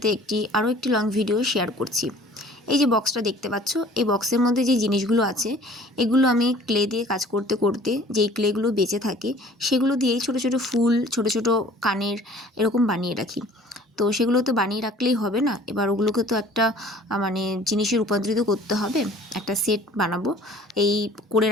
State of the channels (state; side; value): normal; both; correlation 0.50